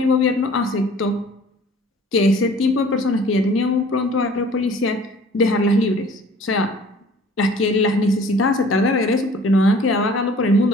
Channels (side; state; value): both; normal; correlation 0.50